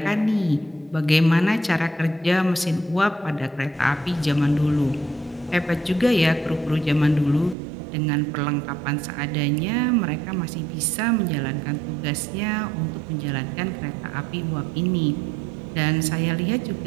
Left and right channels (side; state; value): left; drops out; at 7.6 s